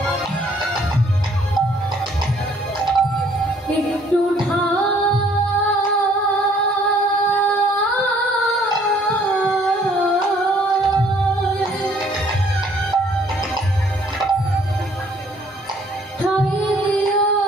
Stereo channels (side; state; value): both; normal; correlation 0.61